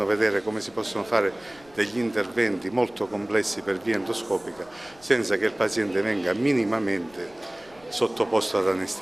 come si possono fare degli interventi molto complessi per via endoscopica senza che il paziente venga minimamente sottoposto ad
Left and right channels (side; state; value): left; noise; rumble, 27 dB below the sound